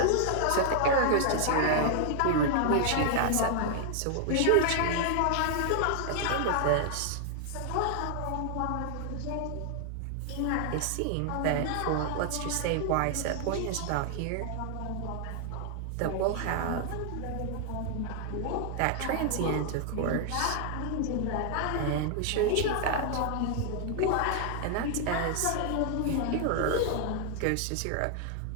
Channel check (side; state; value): both; different; correlation 0.00